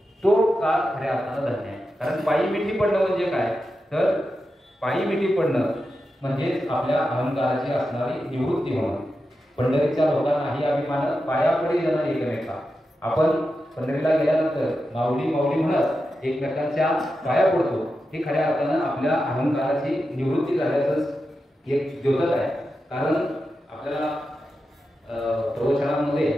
तो काळ खऱ्या अर्थानं धन्य आहे. कारण पायी मिठी पडणं म्हणजे काय, तर पायी मिठी पडणं म्हणजेच आपल्या अहंकाराची असणारी निवृत्ती होणं. पंढरीच्या लोकांनाही अभिमान पायापडे येणं एकमेका. आपण पंढरीला गेल्यानंतर माऊली माऊली म्हणत एकमेकांच्या पाया पडतो, हे खऱ्या अर्थानं आपल्या अहंकाराची निवृत्ती झाल्याचंच एक द्योतक आहे. कारण आपल्याला प्रवचनामध्ये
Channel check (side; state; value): both; normal; correlation 0.90